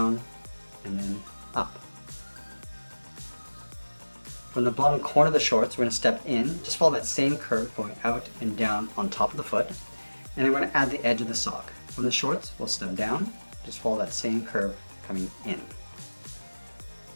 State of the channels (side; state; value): both; inverted; correlation -1.00